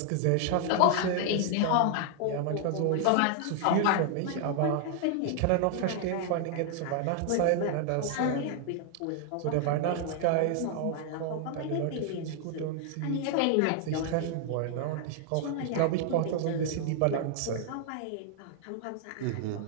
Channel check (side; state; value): both; different; correlation 0.00